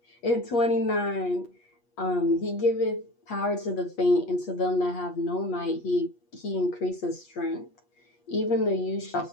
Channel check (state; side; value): late; right; 8.4 ms